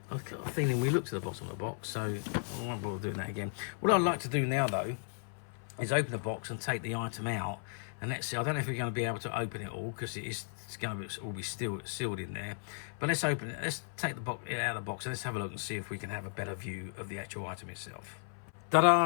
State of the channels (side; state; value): right; silent; 54 dB below the other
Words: I've got a feeling we looked at the bottom of the box, so I won't bother doing that again. What I'd like to do now, though, is open the box and take the item out And let's see, I don't know if we're going to be able to open it all, because it's going to all be sealed in there. But let's open it. Let's take the box out of the box and let's have a look and see if we can have a better view of the actual item itself.